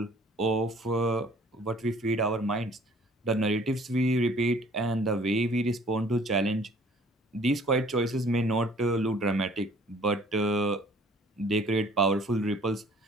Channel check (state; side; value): normal; both; correlation 0.55